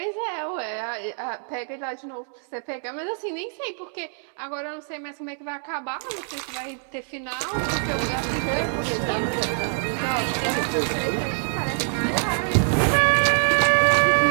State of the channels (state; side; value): silent; left; 62 dB below the other